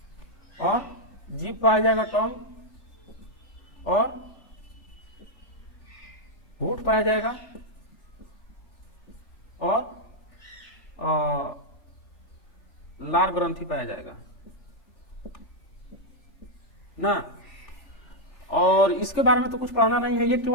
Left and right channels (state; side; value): late; right; 3.4 ms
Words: और जीभ पाया जाएगा, टंग, और होठ पाया जाएगा, और लार ग्रंथि पाया जाएगा ना। और इसके बारे में तो कुछ पढ़ाना नहीं है, ये